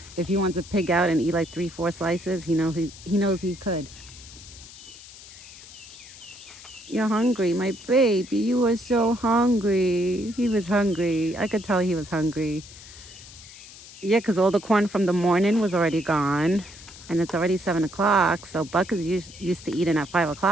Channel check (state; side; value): noise; left; hiss, 18 dB below the sound